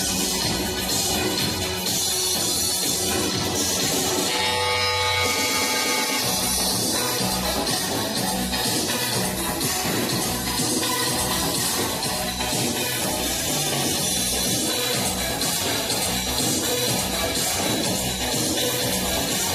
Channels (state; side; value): identical; both; correlation 1.00